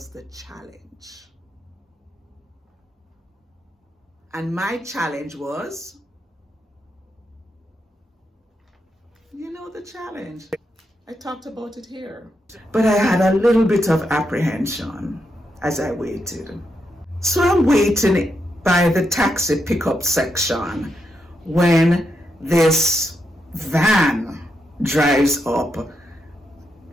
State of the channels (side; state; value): both; normal; correlation 0.83